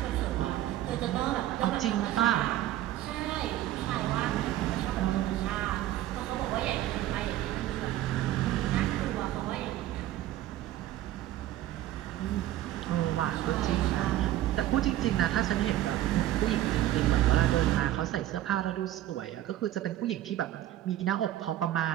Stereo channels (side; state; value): left; quieter; 13.6 dB